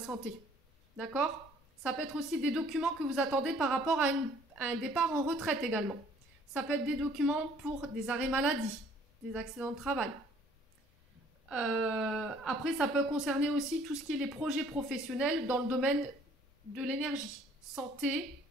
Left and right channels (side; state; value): both; normal; correlation 0.58